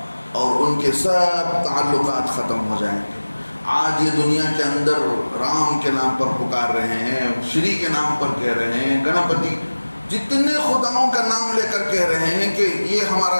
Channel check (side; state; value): both; inverted; correlation -1.00